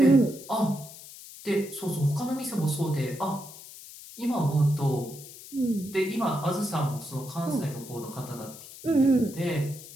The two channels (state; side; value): noise; left; hiss, 16 dB below the sound